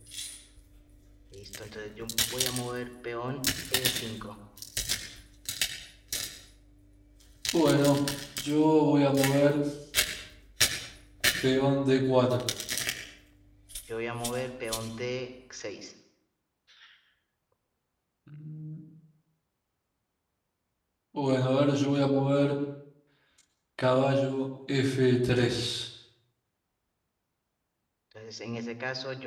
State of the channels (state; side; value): identical; both; correlation 1.00